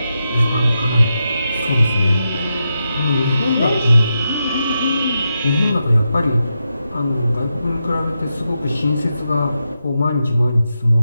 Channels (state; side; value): inverted; both; correlation -0.86